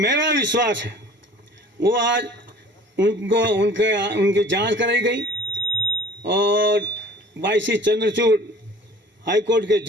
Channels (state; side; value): normal; both; correlation 0.47